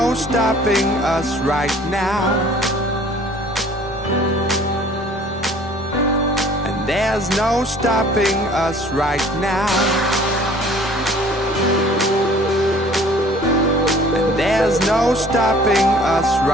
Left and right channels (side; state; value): both; normal; correlation 0.52